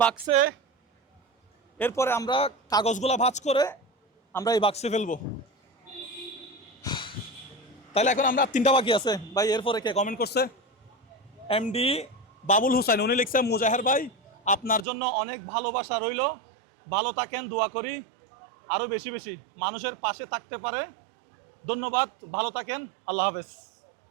এরপরে আমরা কাগজগুলা ভাঁজ করে আমরা এই বাক্সে ফেলবো। তাহলে এখন আমরা 3টা বাকি আছে ভাই। এরপরে কে কমেন্ট করছে? এমডি বাবুল হুসাইন। উনি লিখছে, মুজাহের ভাই, আপনার জন্য অনেক ভালোবাসা রইল, ভালো থাকেন, দোয়া করি আরও বেশি বেশি মানুষের পাশে থাকতে পারে। ধন্যবাদ, ভালো থাকেন, আল্লাহ হাফেজ।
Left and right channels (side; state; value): left; drops out; at 14.9 s